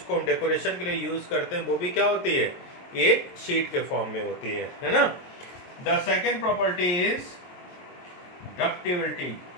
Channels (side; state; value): right; late; 22 ms